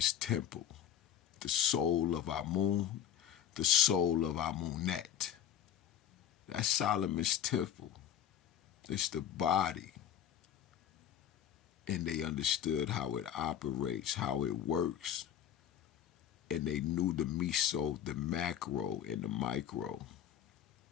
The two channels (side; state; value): right; quieter; 10.1 dB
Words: temple, the soul of Amun, the soul of Amunet. That's Solomon's temple. It's the body. And they understood how it operates, how it works. And they knew the meso, the macro, and the micro,